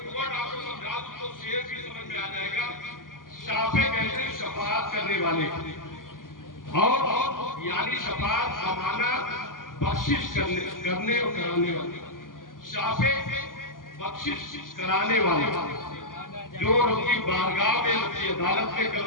वर्ड आपको समझा दूं तो शेर भी समझ में आ जाएगा। शाफे कहते हैं शफाअत करने वाले, और यानी शफाअत जमाना बख्शिश करने और कराने वाले, शाफे बख्शिश कराने वाले, जो उनकी बारगाह में उनकी अदालत में कल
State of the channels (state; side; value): late; right; 0.90 ms